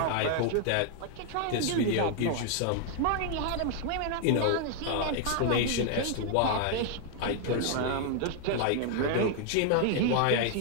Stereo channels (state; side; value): different; both; correlation 0.00